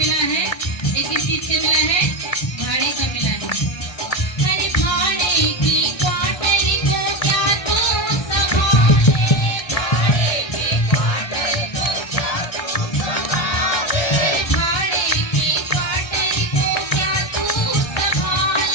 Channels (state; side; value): late; right; 1.3 ms